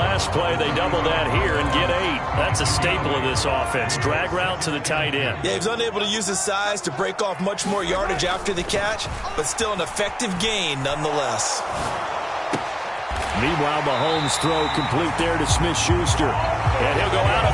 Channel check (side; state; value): both; identical; correlation 1.00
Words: play. They double that here and get 8. That's a staple of this offense. Drag route to the tight end. Yeah, he was unable to use his size to break off much more yardage after the catch, but still an effective gain nonetheless. Meanwhile, Mahomes' throw complete there to Smith-Schuster. And he'll go out